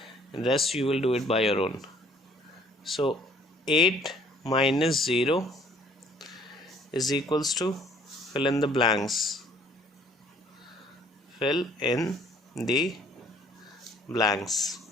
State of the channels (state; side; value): normal; both; correlation 0.58